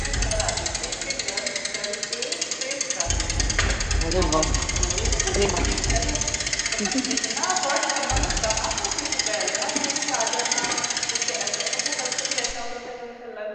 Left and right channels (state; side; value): identical; both; correlation 1.00